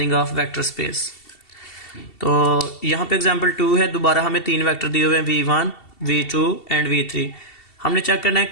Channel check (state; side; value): late; right; 2.7 ms